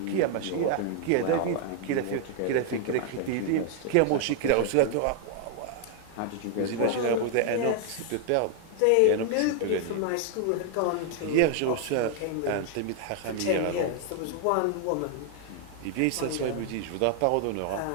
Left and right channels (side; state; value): both; different; correlation 0.00